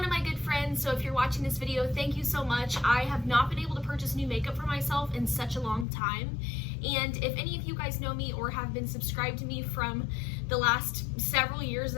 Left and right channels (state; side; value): drops out; right; at 5.9 s